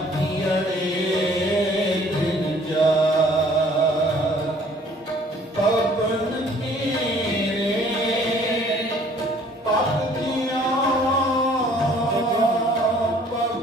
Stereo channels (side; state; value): both; normal; correlation 0.57